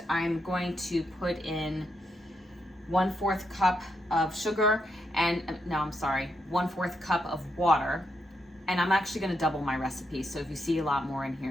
I'm going to put in 1/4 cup of sugar and, no, I'm sorry, 1/4 cup of water. And I'm actually gonna double my recipe, so if you see a lot more in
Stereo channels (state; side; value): normal; both; correlation 0.81